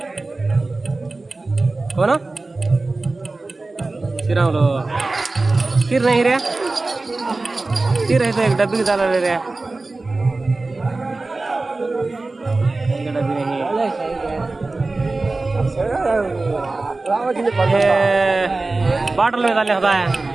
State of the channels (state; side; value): quieter; left; 3.3 dB